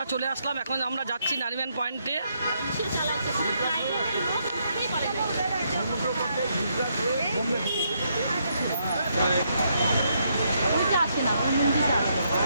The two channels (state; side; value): inverted; both; correlation -0.76